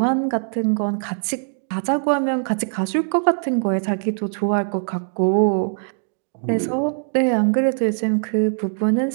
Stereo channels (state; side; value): silent; left; digital silence